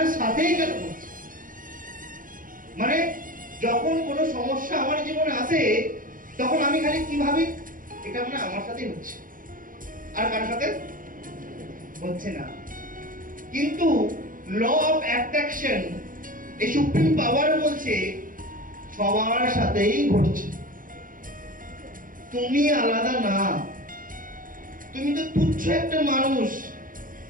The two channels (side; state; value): left; late; 0.40 ms